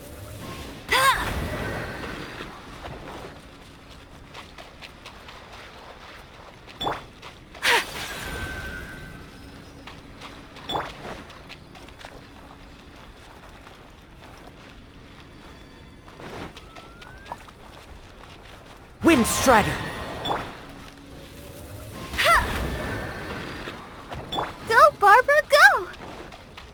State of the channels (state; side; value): identical; both; correlation 1.00